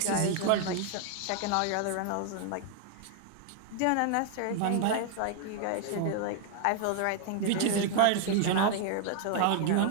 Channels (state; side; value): different; both; correlation 0.00